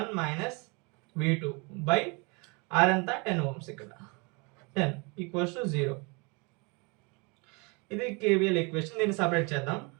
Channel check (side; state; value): left; quieter; 30.4 dB